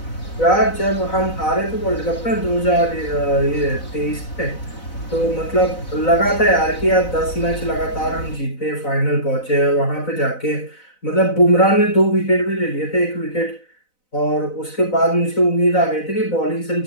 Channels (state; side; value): late; right; 4.0 ms